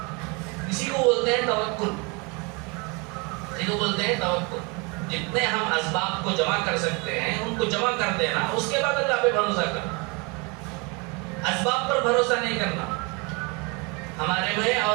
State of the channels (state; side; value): quieter; left; 29.9 dB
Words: اسی کو بولتے ہیں توکل، اسی کو بولتے ہیں توکل۔ جتنے ہم اسباب کو جمع کر سکتے ہیں ان کو جمع کر دینا، اس کے بعد اللہ پہ بھروسہ کرنا، اسباب پر بھروسہ نہیں کرنا۔ ہمارے میں